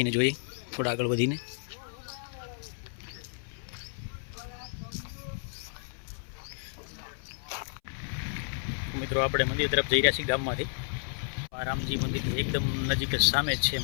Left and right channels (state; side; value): silent; right; 57 dB below the other